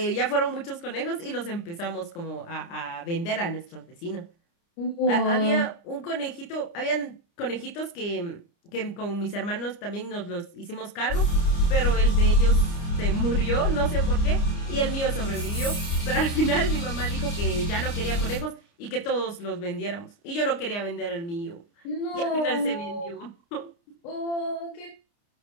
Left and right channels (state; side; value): late; right; 29 ms